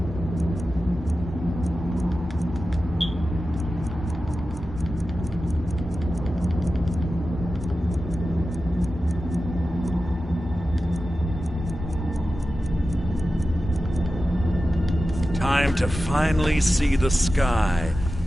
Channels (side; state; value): both; normal; correlation 0.93